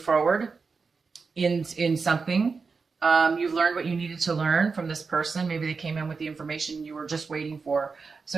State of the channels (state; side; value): quieter; left; 4.8 dB